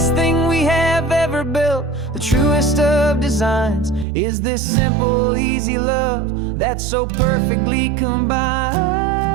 thing we have ever built, the truest of designs is this simple, easy love that so perfectly combines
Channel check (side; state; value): left; drops out; at 4.0 s